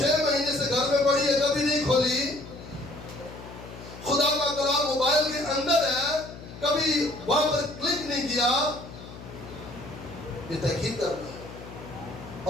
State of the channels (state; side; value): noise; left; hum, 14 dB below the sound